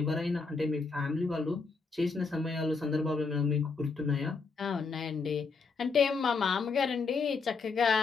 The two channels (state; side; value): quieter; right; 4.7 dB